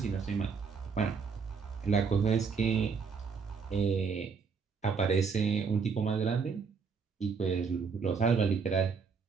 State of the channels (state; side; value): quieter; left; 5.5 dB